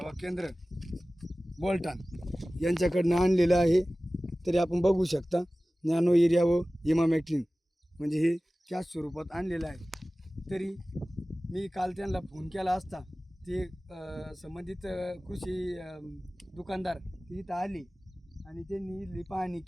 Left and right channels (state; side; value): normal; both; correlation 0.97